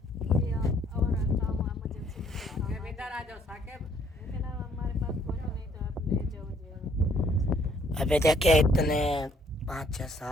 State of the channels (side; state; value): both; normal; correlation 0.65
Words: और काम इमरजेंसी साकिब इधर आ जाओ साकिब। लेकिन अब हमारे पास कुछ नहीं तो आप ले जाओ जी। अभी देखिए इतने 5-6